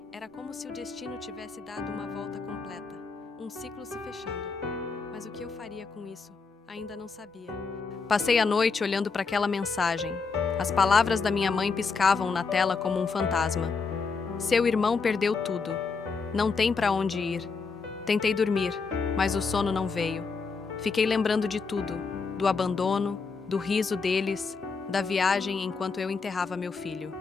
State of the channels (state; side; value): quieter; right; 4.8 dB